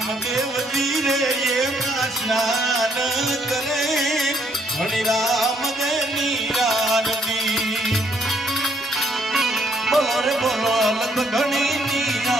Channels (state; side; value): normal; both; correlation 0.69